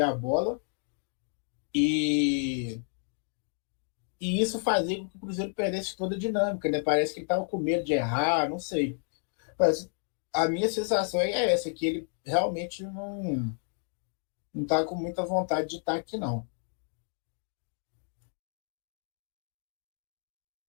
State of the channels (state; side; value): silent; right; 57 dB below the other